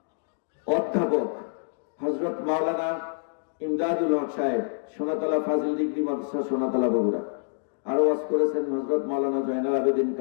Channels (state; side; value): silent; right; digital silence